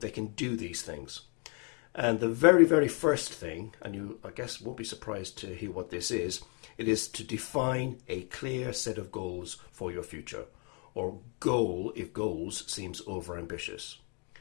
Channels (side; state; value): right; quieter; 36.2 dB